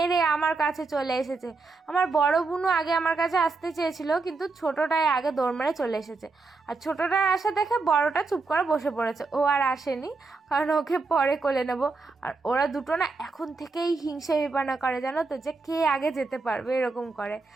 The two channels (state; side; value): quieter; left; 3.9 dB